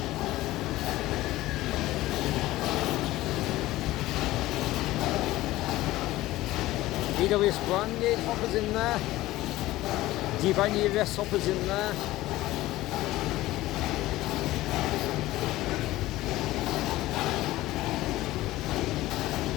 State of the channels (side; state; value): right; quieter; 17.0 dB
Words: EWS branded hoppers in there. GBRF hoppers in there.